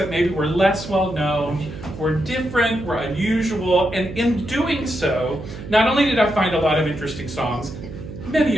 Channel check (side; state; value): right; noise; hum, 11 dB below the sound